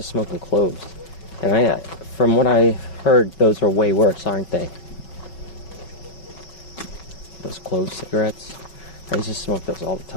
smoking cloves, and from what I heard, those are way worse, aren't they? Those clove cigarettes. I used to smoke those all the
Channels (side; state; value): right; late; 5.4 ms